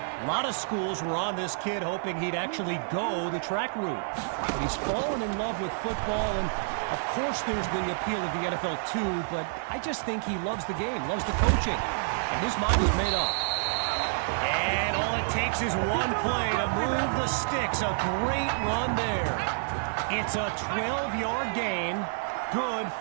lot of schools were on this kid hoping he'd actually go the track route. But he's fallen in love with football, and of course there's the appeal of the NFL too, but I just think he loves the game, loves the coaching, and his mind is made up. And all it takes is one play to move the sticks. A great run there. It's a 12-yard gain, good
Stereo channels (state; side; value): silent; left; digital silence